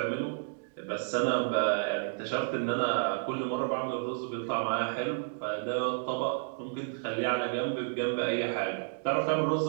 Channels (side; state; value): left; silent; digital silence